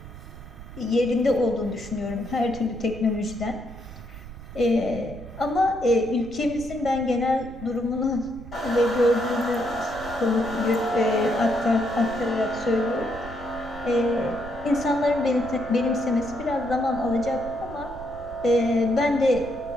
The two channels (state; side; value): noise; right; rumble, 14 dB below the sound